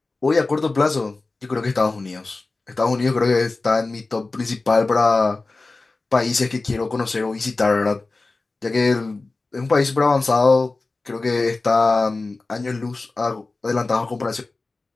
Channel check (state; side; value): quieter; right; 3.5 dB